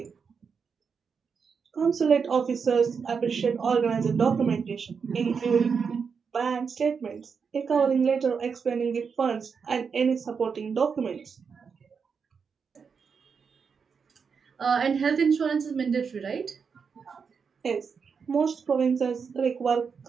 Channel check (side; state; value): left; quieter; 5.9 dB